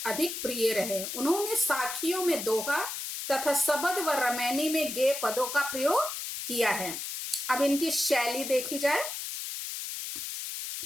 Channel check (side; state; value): left; noise; hiss, 5 dB below the sound